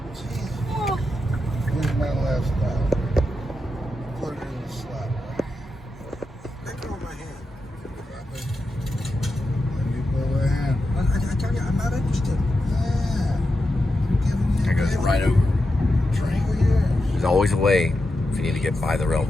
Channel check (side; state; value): both; normal; correlation 0.88